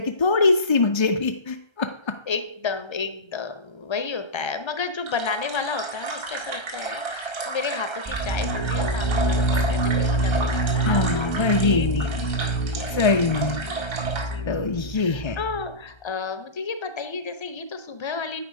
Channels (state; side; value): late; right; 1.3 ms